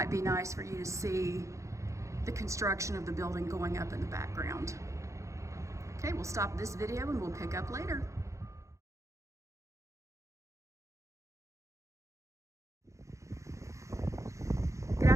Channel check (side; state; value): left; late; 0.15 ms